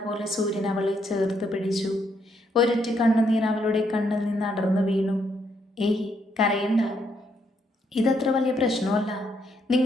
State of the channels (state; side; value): normal; both; correlation 0.74